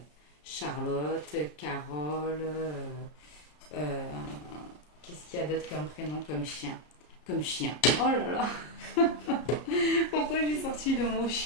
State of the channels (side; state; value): right; late; 33 ms